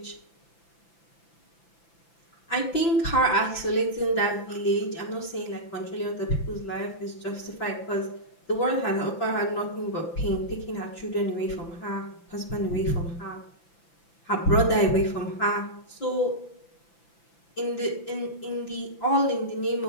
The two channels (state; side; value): late; right; 5.9 ms